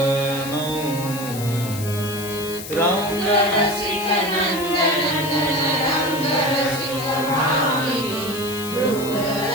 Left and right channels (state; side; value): noise; left; hiss, 11 dB below the sound